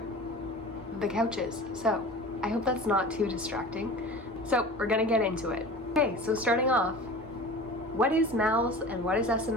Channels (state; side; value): normal; both; correlation 0.37